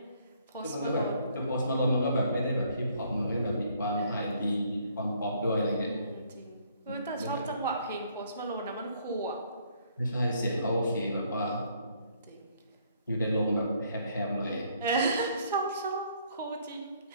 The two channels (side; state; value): both; inverted; correlation -0.65